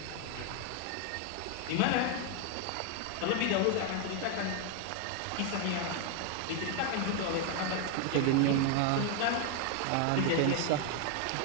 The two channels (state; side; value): different; both; correlation 0.00